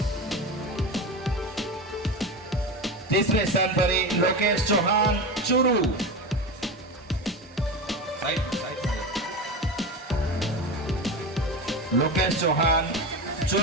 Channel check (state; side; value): normal; both; correlation 0.23